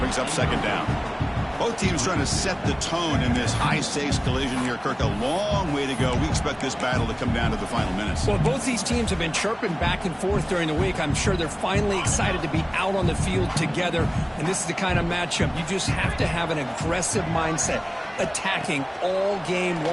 up second down. Both teams trying to set the tone in this high-stakes collision here, Kirk. A long way to go. We expect this battle to come down to the final minutes. Well, both these teams have been chirping back and forth during the week. I'm sure they're finally excited to be out on the field together. And this is the kind of matchup you just have to have an aggressive mindset, attacking all game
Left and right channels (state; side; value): identical; both; correlation 1.00